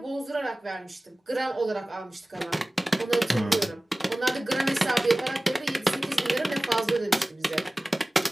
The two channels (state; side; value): normal; both; correlation 0.98